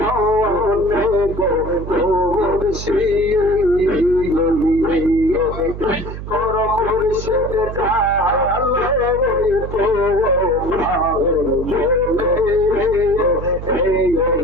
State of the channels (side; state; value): right; noise; hum, 9 dB below the sound